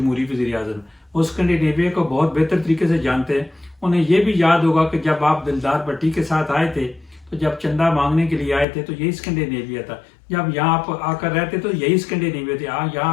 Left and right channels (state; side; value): drops out; right; at 8.7 s